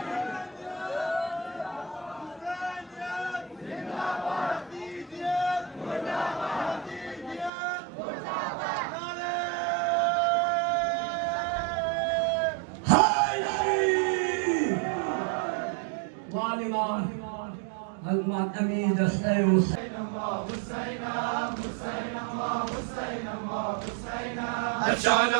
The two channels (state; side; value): drops out; left; at 7.5 s